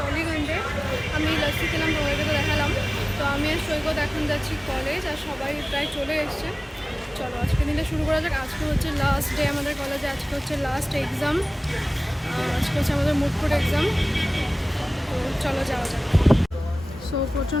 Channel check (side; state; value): both; normal; correlation 0.98